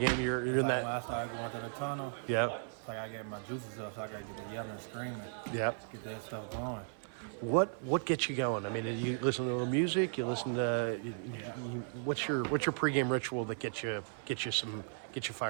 you're It's in like that? when I start going to the tunnel, Yeah, it's like I get my juices up, so I gotta get the yelling and screaming, yeah. get that stuff going. What gets you going? I mean, you listen to a little music. You listen to what's your pregame ritual that gets you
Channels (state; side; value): silent; left; 54 dB below the other